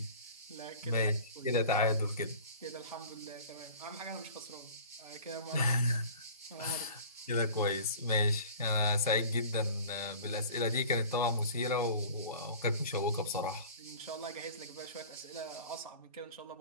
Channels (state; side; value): inverted; both; correlation -0.42